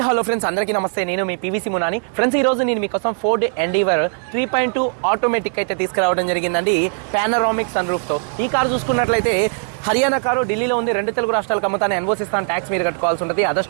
hello friends, అందరికీ నమస్తే. నేను మీ పీవీసీ మునాని. ఫ్రెండ్స్, ఈ రోజు నేను మీకోసం ఫోర్డ్ ఎండీవర్ 3.2 ఆటోమేటిక్ అయితే తీసుకురావడం జరిగిందండి, పానరామిక్ సన్ రూఫ్తో. ఈ కారు చూసుకున్నట్లయితే హర్యానా కారు ఢిల్లీలో ఉంది. 2 తెలుగు రాష్ట్రాలకు అమ్ముతాను. ఎన్ఓసి ఇస్తాను, ట్యాక్స్ మీరు కట్టుకోవాల్సి ఉంటుంది. అదర్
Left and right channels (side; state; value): left; silent; 55 dB below the other